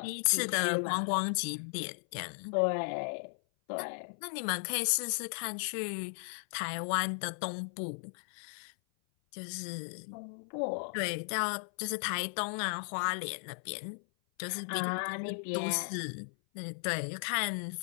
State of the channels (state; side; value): silent; right; 54 dB below the other